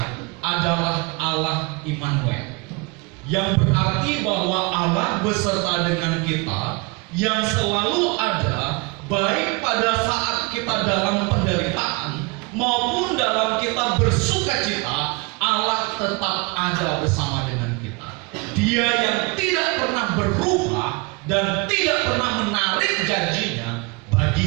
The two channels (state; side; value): quieter; left; 28.3 dB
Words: adalah Allah Immanuel, yang berarti bahwa Allah beserta dengan kita, yang selalu ada baik pada saat kita dalam penderitaan maupun dalam kita bersuka cita. Allah tetap ada bersama dengan kita. Dia yang tidak pernah berubah dan tidak pernah menarik janjinya